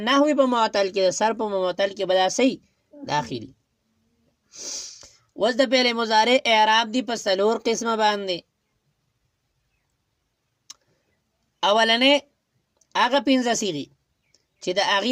نحوي په معتل کې، د صرف په معتل کې به دا صحیح داخلي. اوس د فعل مضارع اعراب دی په څلور قسمه باندې. اولنې هغه پنځه صیغې چې د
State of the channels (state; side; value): identical; both; correlation 1.00